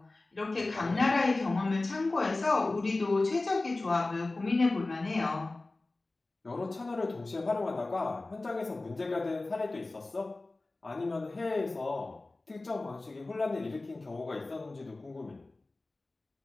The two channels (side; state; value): right; quieter; 3.1 dB